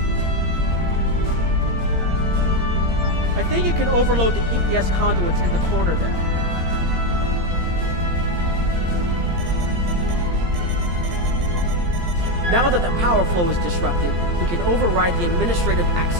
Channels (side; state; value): left; late; 17 ms